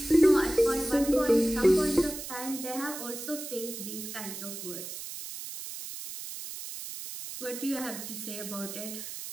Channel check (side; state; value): right; noise; hiss, 9 dB below the sound